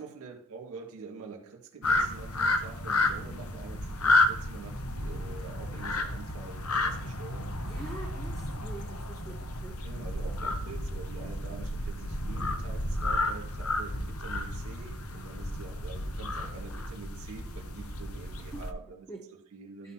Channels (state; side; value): normal; both; correlation 0.67